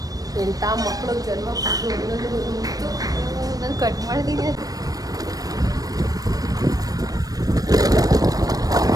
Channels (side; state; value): left; late; 0.18 ms